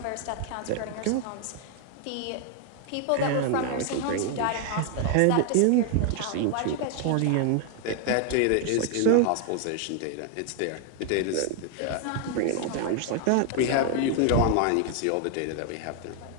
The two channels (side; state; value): both; different; correlation 0.00